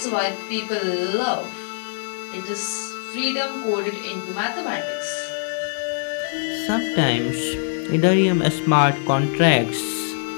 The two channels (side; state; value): right; silent; digital silence